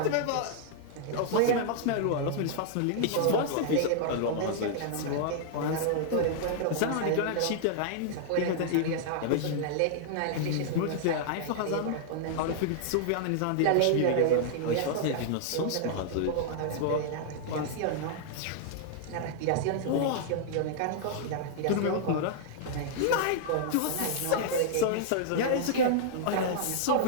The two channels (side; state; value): both; different; correlation -0.01